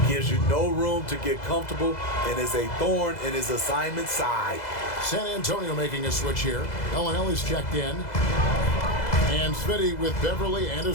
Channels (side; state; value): right; late; 2.0 ms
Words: Gives you no room to get comfortable and is a thorn in his assignment side. San Antonio making a switch here. Ellis checked in. And Smitty with Beverly and